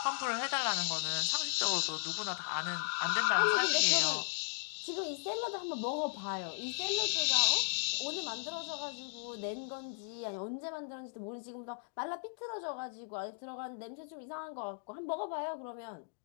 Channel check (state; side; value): silent; right; digital silence